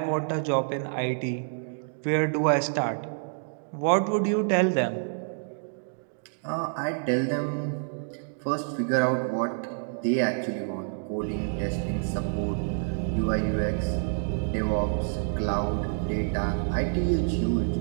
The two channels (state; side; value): silent; left; digital silence